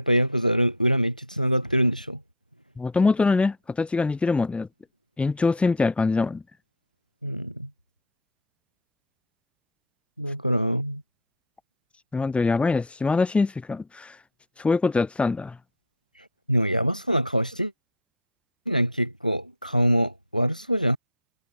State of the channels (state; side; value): normal; both; correlation -0.01